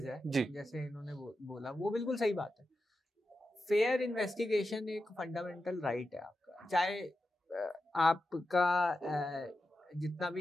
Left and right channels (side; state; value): both; normal; correlation 0.90